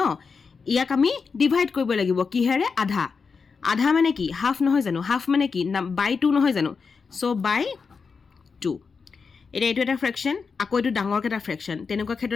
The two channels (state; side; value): quieter; right; 5.2 dB